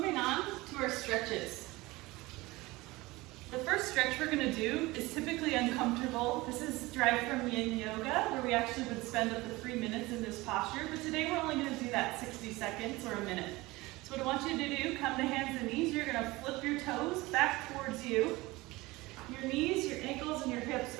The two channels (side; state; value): left; quieter; 21.0 dB